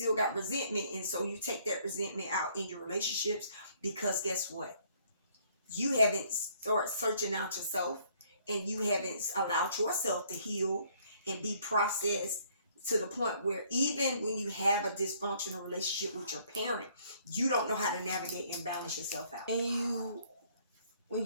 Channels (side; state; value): both; inverted; correlation -0.63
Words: got resentment, and so you take that resentment out in your relationships, because guess what? You haven't started searching out yourself, and you haven't allowed yourself to heal and be processed to the point where even when you have a dysfunctional relationship with your parent, you don't know how to navigate and balance yourself out. And when